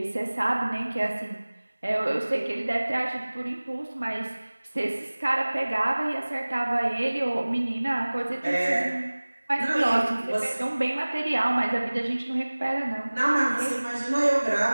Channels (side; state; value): both; inverted; correlation -1.00